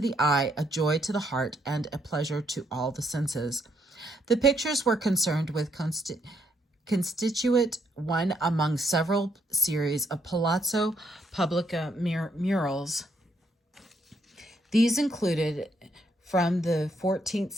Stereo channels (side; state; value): both; normal; correlation 0.73